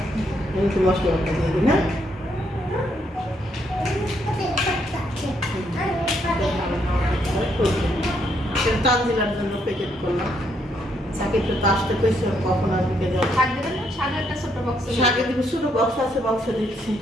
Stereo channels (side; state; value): both; normal; correlation 0.74